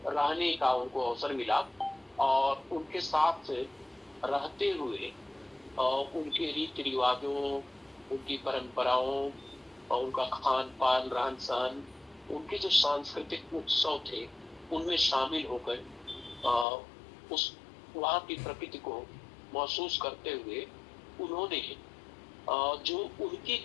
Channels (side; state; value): right; drops out; at 16.7 s